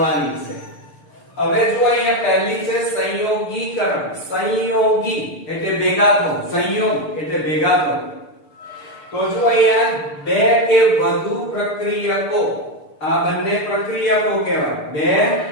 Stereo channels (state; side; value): late; right; 6.7 ms